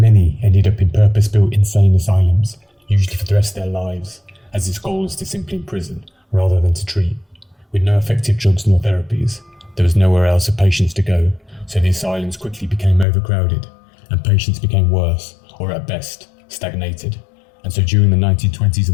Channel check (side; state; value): right; drops out; at 13.1 s